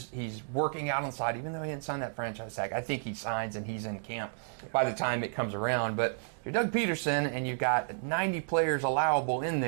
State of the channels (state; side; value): silent; left; digital silence